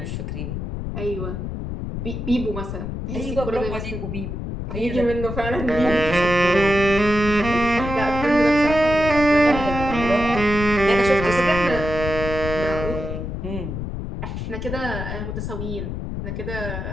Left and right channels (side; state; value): left; noise; rumble, 5 dB below the sound